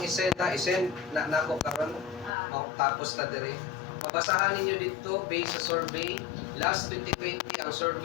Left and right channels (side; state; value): right; drops out; at 2.3 s